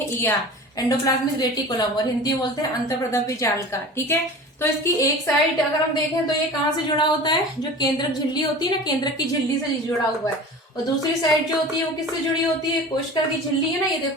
ईआर, एंडोप्लाज्मिक रेटिकुलम, और हिंदी में बोलते हैं अंतःप्रद्रव्य जालिका, ठीक है। तो इसकी एक साइड अगर हम देखें तो ये कहाँ से जुड़ा होता है, जो केंद्रक झिल्ली होती है ना, केंद्रक की झिल्ली से जुड़ा हुआ है। और दूसरी साइड जो होती है वो किससे जुड़ी होती है, कोशिका की झिल्ली है ना, ये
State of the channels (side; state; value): both; normal; correlation 0.37